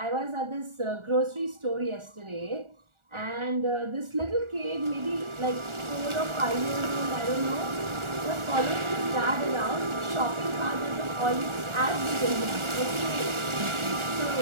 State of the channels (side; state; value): left; late; 1.4 ms